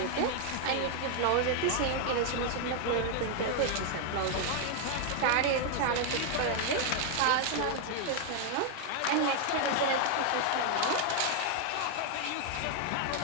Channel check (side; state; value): both; different; correlation 0.00